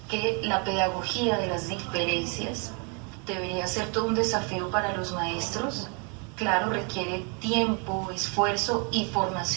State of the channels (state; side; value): quieter; left; 34.8 dB